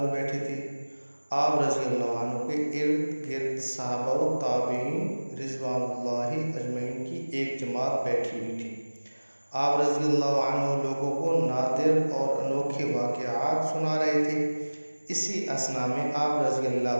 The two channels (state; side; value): inverted; both; correlation -1.00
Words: میں بیٹھے تھے۔ آپ رضی اللہ عنہ کے ارد گرد صحابہ و تابعین رضوان اللہ اجمعین کی ایک جماعت بیٹھی ہوئی تھی۔ آپ رضی اللہ عنہ لوگوں کو نادر اور انوکھے واقعات سنا رہے تھے۔ اسی اثنا میں آپ رضی